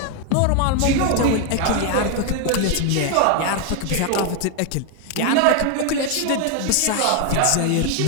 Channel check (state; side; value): different; both; correlation 0.01